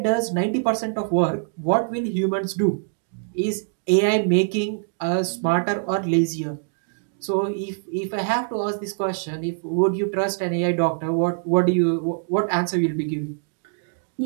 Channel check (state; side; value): silent; left; digital silence